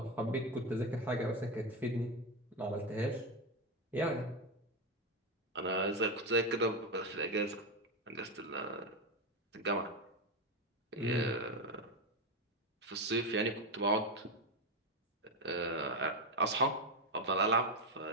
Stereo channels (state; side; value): normal; both; correlation 0.10